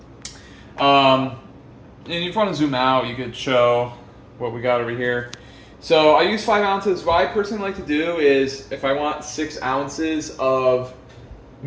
And if you want to zoom out, you could show what we got over here. So I use 5 ounces. What I personally like to do is, if I want 6 ounces of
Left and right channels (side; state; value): both; identical; correlation 1.00